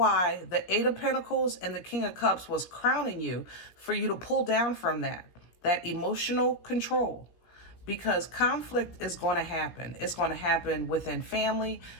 the Eight of Pentacles and the King of Cups was crowning you, for you to pull down from that emotional control. Because conflict is going to happen. It's going to happen within family,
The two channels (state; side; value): late; right; 17 ms